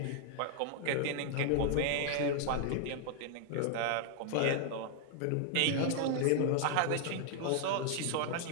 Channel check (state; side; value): different; both; correlation 0.00